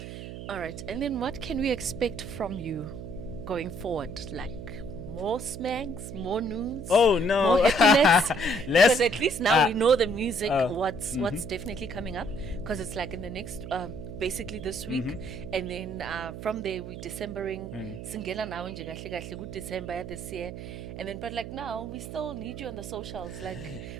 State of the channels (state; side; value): noise; right; hum, 10 dB below the sound